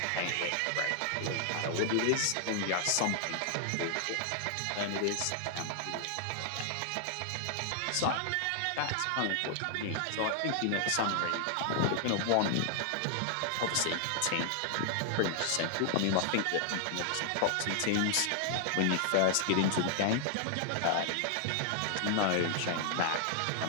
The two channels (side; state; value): both; different; correlation 0.00